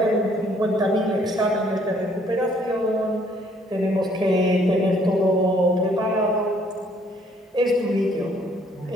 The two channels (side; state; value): both; normal; correlation 0.63